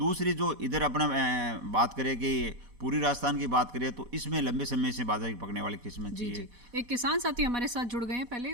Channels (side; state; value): left; late; 4.1 ms